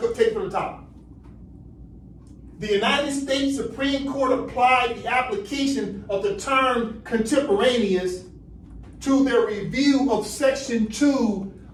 take it from the top. The United States Supreme Court applied the application of the term contemporaneous to their review of Section 2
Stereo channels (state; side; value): identical; both; correlation 1.00